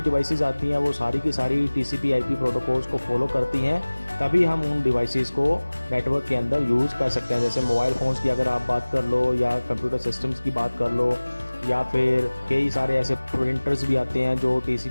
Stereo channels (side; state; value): both; inverted; correlation -1.00